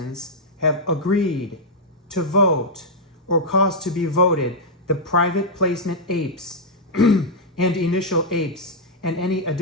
have agreed to vote or cause to be voted the private placement apes and initial apes and any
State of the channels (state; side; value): normal; both; correlation -0.06